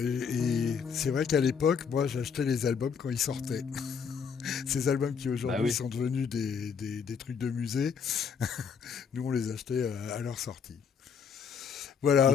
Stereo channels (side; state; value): right; quieter; 6.5 dB